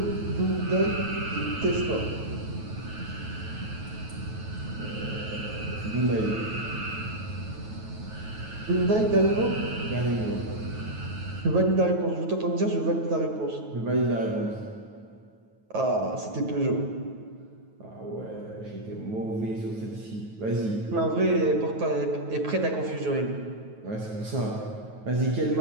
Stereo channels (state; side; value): late; left; 9.3 ms